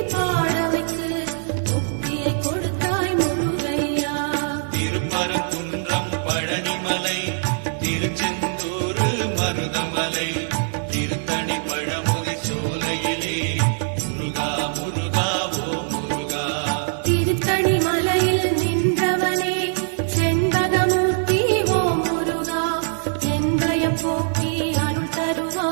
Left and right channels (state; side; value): silent; left; digital silence